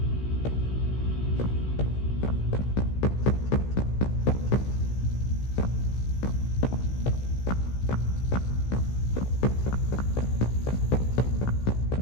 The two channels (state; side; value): late; right; 16 ms